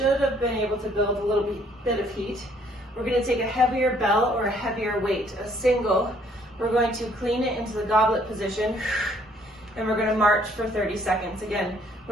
have been able to build a little bit of heat. We're going to take a heavier bell or a heavier weight, a single. We're going to clean it into the goblet position, and we're going to march for 30 seconds. Again,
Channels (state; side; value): normal; both; correlation 0.63